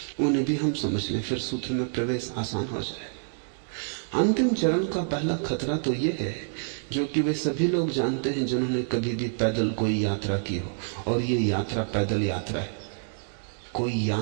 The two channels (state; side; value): silent; left; digital silence